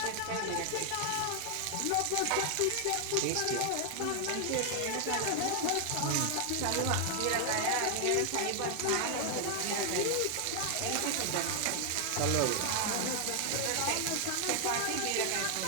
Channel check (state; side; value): different; both; correlation 0.00